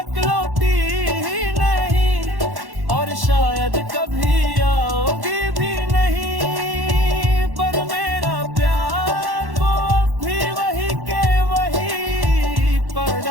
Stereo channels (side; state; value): left; late; 1.1 ms